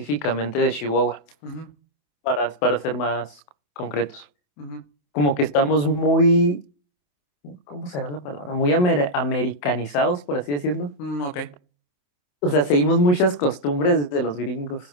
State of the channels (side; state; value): right; late; 28 ms